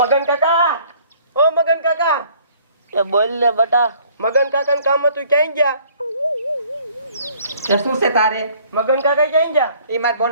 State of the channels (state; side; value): inverted; both; correlation -0.57